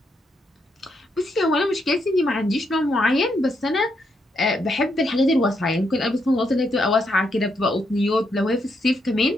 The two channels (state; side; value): normal; both; correlation 0.78